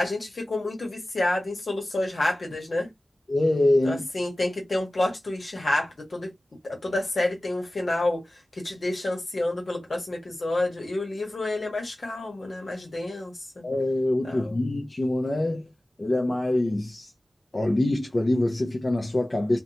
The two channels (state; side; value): normal; both; correlation 0.97